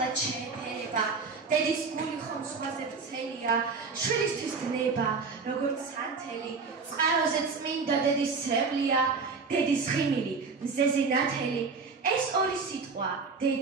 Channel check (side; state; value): left; quieter; 4.7 dB